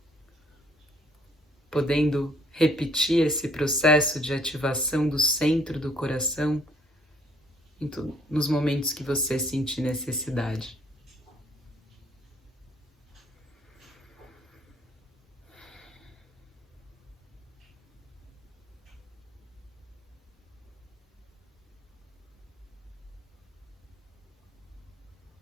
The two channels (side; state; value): both; normal; correlation 0.63